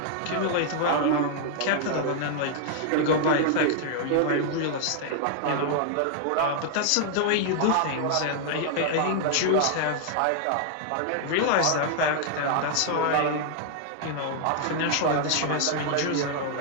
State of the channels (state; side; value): different; both; correlation 0.00